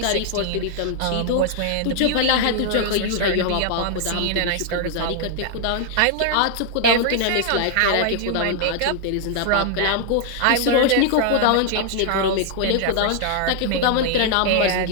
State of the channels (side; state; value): both; different; correlation 0.00